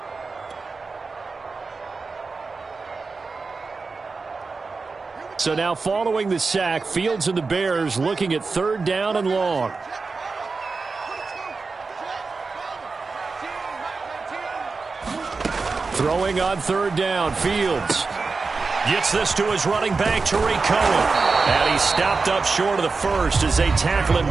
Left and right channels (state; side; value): quieter; left; 4.3 dB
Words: So now following the sack, Fields and the Bears looking at 3rd down and long. Throwing on 3rd down, Fields gets this to his running back, Tariq Cohen. And he's stopped up short of the first as they tackle him